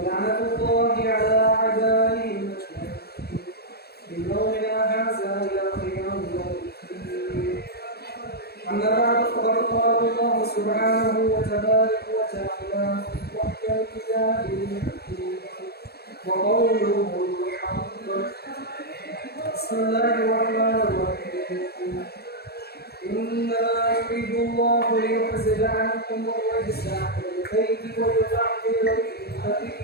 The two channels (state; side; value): late; right; 0.46 ms